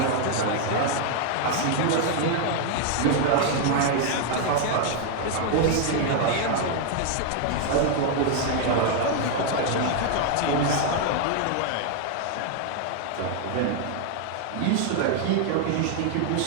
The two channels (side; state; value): both; different; correlation 0.00